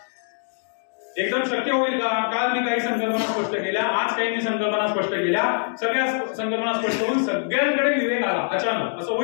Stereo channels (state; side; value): silent; right; digital silence